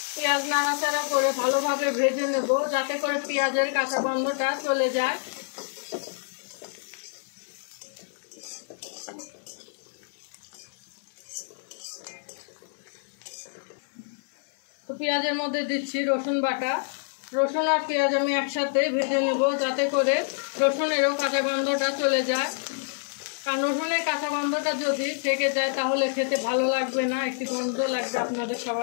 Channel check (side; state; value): right; silent; 60 dB below the other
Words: পেঁয়াজ নাড়াচাড়া করে ভালোভাবে ভেজে নেব যাতে করে পেঁয়াজের কাঁচা গন্ধটা চলে যায়। তো পেঁয়াজের মধ্যে দিচ্ছি রসুন বাটা। রসুন আর পেঁয়াজ আমি একসাথে ভেজে নেব যাতে করে রসুনেরও কাঁচা গন্ধটা চলে যায়। কারণ রসুনের কাঁচা গন্ধটা যদি থেকে যায় তাহলে খেতে ভালো লাগবে না, একটি গন্ধ লাগবে আপনাদের